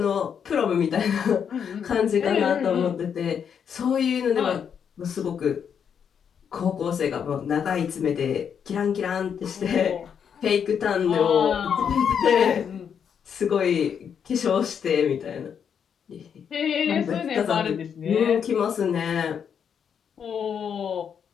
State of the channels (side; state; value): right; quieter; 7.6 dB